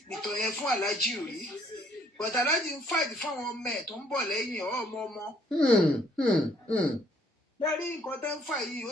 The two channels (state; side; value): normal; both; correlation 0.63